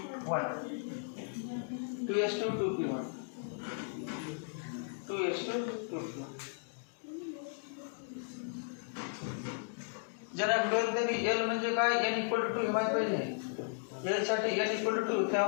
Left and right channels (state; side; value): silent; right; digital silence